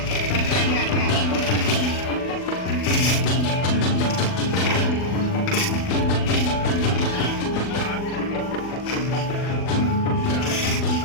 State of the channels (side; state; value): right; late; 40 ms